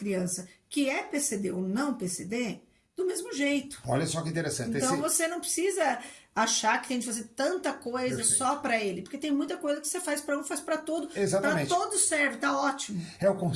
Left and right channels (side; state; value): both; identical; correlation 1.00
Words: que é PCD ou não PCD, do mesmo jeito. Olha só que interessante. Então você não precisa achar que tem de fazer tanta coisa Perfeito. Só para ele, porque tem muita coisa que você faz para um, faz para todo. Exatamente. Para todos serve, tá ótimo. É o